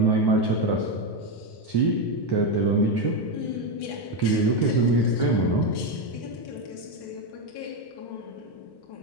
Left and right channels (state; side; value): late; right; 1.1 ms